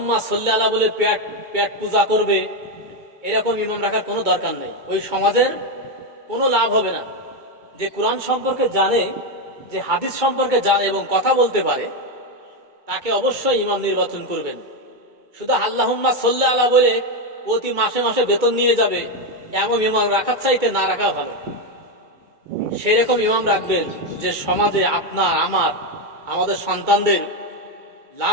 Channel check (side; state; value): left; late; 2.3 ms